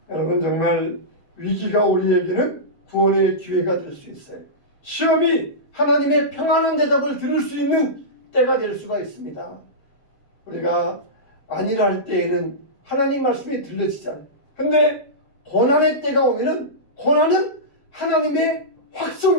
여러분, 정말 위기가 우리에게는 구원의 기회가 될 수 있어요. 시험이 하나님의 평안한 대답을 들을 수 있는 때가 될 수가 있습니다. 우리가 안일할 할 때에는 하나님 말씀이 들려지잖아요. 근데 고난의 때가 오면은 고난은 하나님의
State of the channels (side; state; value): right; late; 7.2 ms